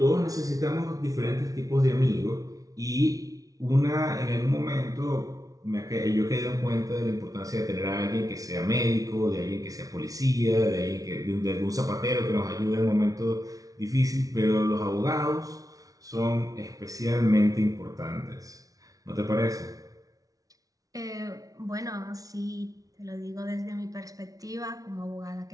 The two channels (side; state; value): left; late; 0.18 ms